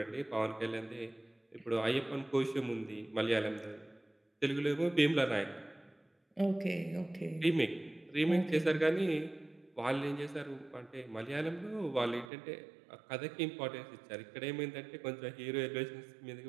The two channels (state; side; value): drops out; left; at 12.2 s